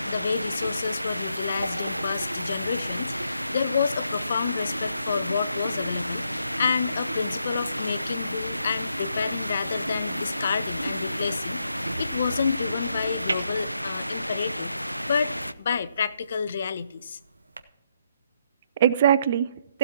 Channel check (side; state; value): both; inverted; correlation -0.77